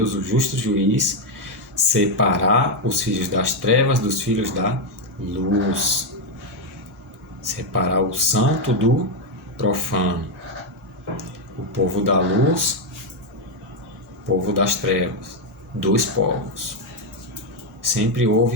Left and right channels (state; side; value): normal; both; correlation 0.03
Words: o justo juiz, separar os filhos das trevas dos filhos da luz. Separar o santo do profano. O povo da luz, o povo das trevas. 2 povos. Sempre